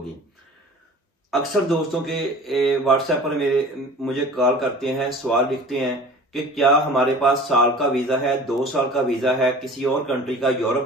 अक्सर दोस्तों के व्हाट्सएप पर मुझे कॉल करते हैं, सवाल लिखते हैं कि क्या हमारे पास साल का वीजा है, 2 साल का वीजा है, किसी और कंट्री का, यूरोप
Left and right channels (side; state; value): both; normal; correlation 0.42